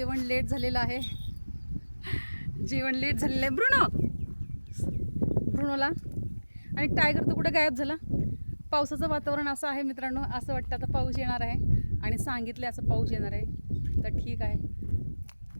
लेट झालेलं आहे. जेवण लेट झालेलं आहे. ब्रुनोला आणि टायगर तर कुठे गायब झाला. पावसाचं वातावरण असं आहे मित्रांनो, असं वाटतं आता पाऊस येणार आहे आणि सांगितले असं पाऊस येणार आहे. तर ठीक आहे.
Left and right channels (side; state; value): both; inverted; correlation -1.00